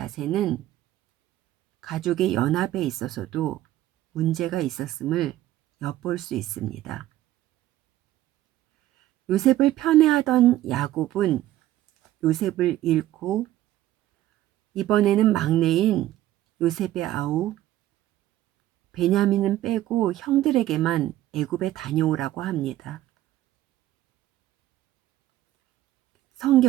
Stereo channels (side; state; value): left; quieter; 14.3 dB